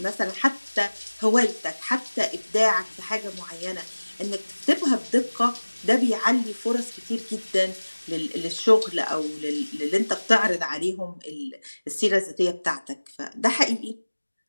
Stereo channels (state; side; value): inverted; both; correlation -1.00